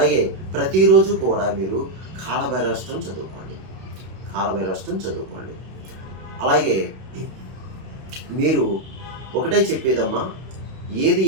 ప్రతిరోజు కూడా మీరు కాలభైరవాష్టకం చదువుకోండి. అలాగే మీరు ఒకటే చెప్పేదమ్మా, ఏది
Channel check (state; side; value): late; left; 32 ms